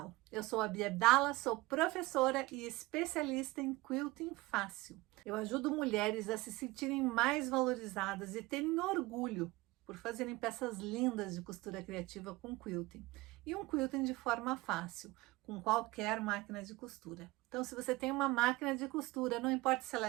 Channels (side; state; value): left; quieter; 20.7 dB